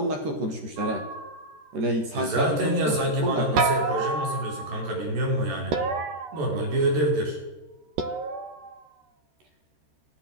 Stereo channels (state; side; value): late; left; 14 ms